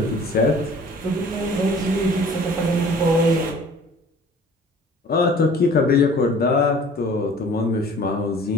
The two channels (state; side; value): normal; both; correlation 0.49